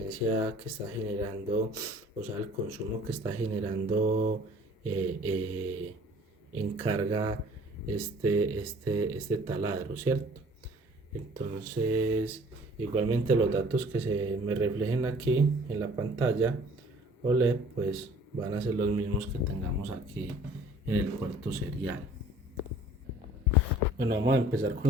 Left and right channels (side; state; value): both; normal; correlation 0.52